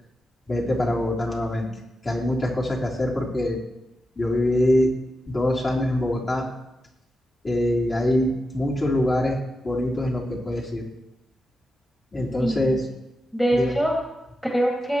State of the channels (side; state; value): both; normal; correlation 0.89